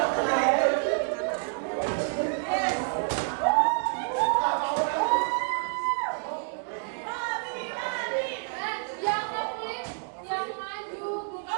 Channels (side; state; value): left; silent; digital silence